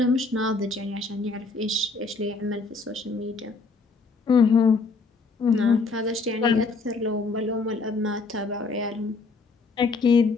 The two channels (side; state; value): right; quieter; 4.0 dB